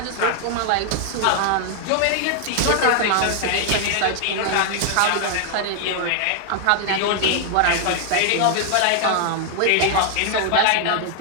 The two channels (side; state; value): both; different; correlation 0.00